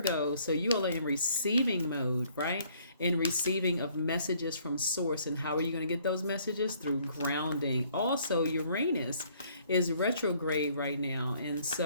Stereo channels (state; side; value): inverted; both; correlation -0.62